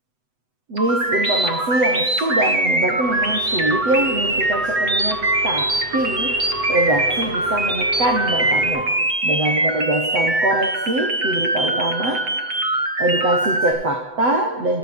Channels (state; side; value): late; left; 8.0 ms